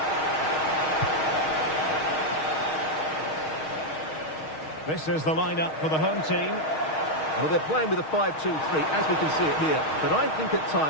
This is the lineup for the home team. Well, they're playing with a 5-2-3, as we can see it here. But I think at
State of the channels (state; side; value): late; right; 6.4 ms